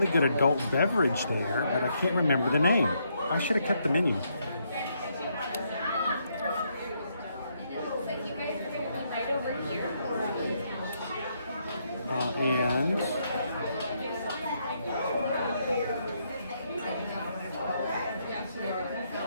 good adult beverage there, but I can't remember the name. I should have kept the menu. And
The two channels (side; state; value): both; inverted; correlation -0.76